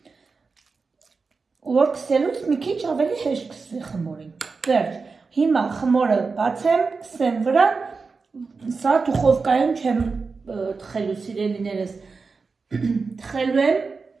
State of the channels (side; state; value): left; quieter; 4.5 dB